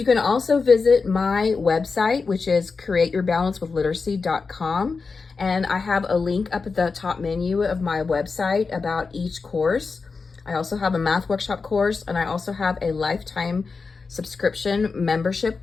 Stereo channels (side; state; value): right; quieter; 4.6 dB